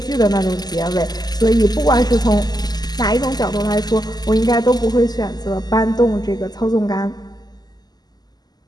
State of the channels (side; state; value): right; late; 0.20 ms